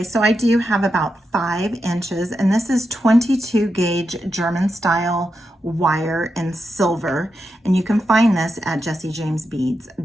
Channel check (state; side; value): normal; both; correlation 0.87